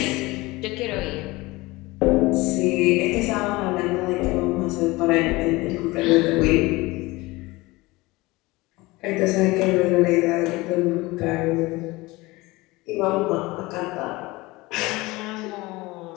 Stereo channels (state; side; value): quieter; right; 21.6 dB